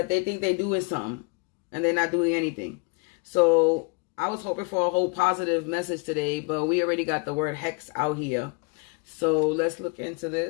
they think they're doing something and they're not doing anything. So I was hoping for a whole positive message today, but we already got the word hex out here. So let's look into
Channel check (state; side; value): quieter; right; 32.6 dB